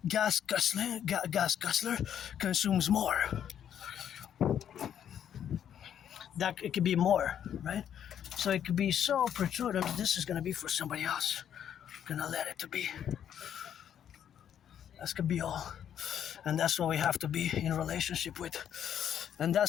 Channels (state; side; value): quieter; right; 9.5 dB